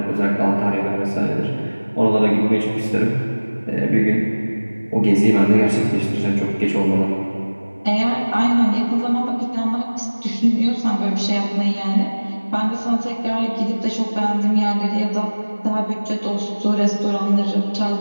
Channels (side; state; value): both; inverted; correlation -1.00